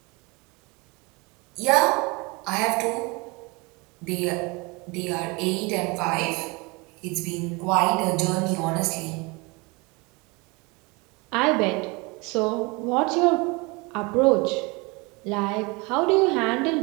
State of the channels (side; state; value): left; quieter; 27.1 dB